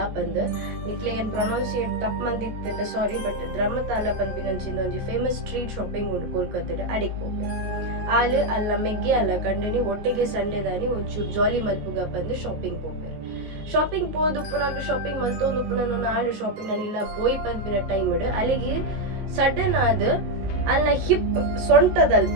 ಪಂದ್ ನಿಕ್ಲೆ ಏನು ಪ್ರೊನೌನ್ಸಿಯೇಟ್ ತಪ್ಪು ಮಂದಿತ್ತಂಡ ಸಾರಿ. ಬಟ್ ದ್ರಾಮತಾಲ ಪನ್ಪಿನಂಚಿಂದ ಒಂಜಿ ಫೇಮಸ್ ಸ್ಟ್ರೀಟ್ ಶಾಪಿಂಗ್ ಉಂಟು ಕೋಲ್ಕತ್ತಾಡ ಅಡಿಗೆ ಹೋಗ್ಬೇರೆ ಆಲು ಅಲ್ಲ ಮೆಗ್ಗೆ ಅಲ್ಲ ಕಂಡನಿ ಒಟ್ಟಿಗೆ ಸಂಡೇ ದಾನಿ ಒಂಚೂರು ಜಾಲಿ ಮಲ್ಪುಗ ಬಂದು ಶಾಪಿಂಗ್ ಹೋಗ್ಬೇರೆ. ಶಾಪಿಂಗ್ ಪೋದುಪ್ಪುನಾಗ ಶಾಪಿಂಗ್ ಮಲ್ತೊಂದುಪ್ಪು ನಾನು ಆಡು ಶಾಪಿಂಗ್ ನಾನು ಇಲ್ಲ ಪೋಯ್ ಪನ್ಪಿನ ಟೈಮ್ ಅಲ್ಲಿಗೆ ಸಡನ್ ಆದ ಅಲ್ಲ ಹಿಪ್ ಸೊಂಟದಲ್ಪ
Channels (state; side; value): late; left; 19 ms